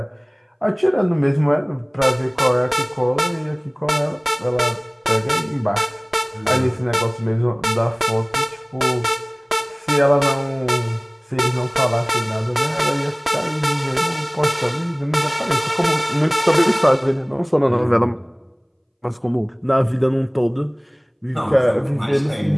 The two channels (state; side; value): identical; both; correlation 1.00